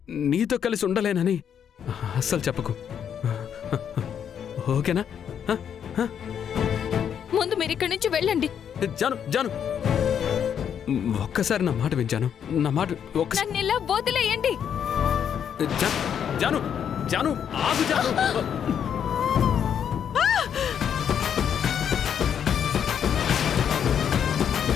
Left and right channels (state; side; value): quieter; right; 8.4 dB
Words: నీతో కలిసి ఉండలేనని అస్సలు చెప్పకు, ఓకేనా? ముందు మీరు ఇక్కడి నుంచి వెళ్ళండి. జాను, జాను, ఒక్కసారి నా మాట వించాను. నా మాట ఒక్కసారి. నన్ను ఇలా వదిలేయండి. జాను, జాను, ఆగు జాను.